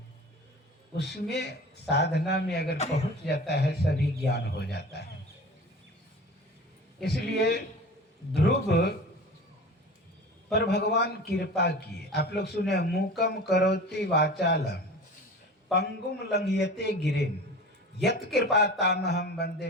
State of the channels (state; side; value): normal; both; correlation 0.36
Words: उसमें साधना में अगर पहुंच जाता है सभी ज्ञान हो जाता है। इसलिए ध्रुव पर भगवान कृपा किए। आप लोग सुने, मूकम करोति वाचालम पंगुम लंघयते गिरिम यत कृपा तामहम वंदे